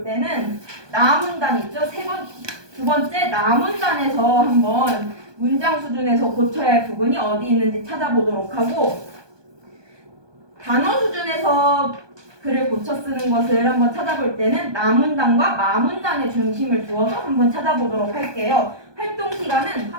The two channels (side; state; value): left; late; 1.2 ms